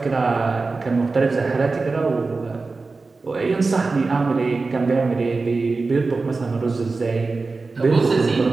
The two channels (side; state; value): left; quieter; 3.9 dB